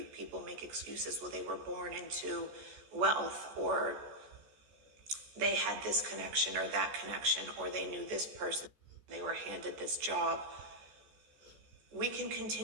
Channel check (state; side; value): late; left; 14 ms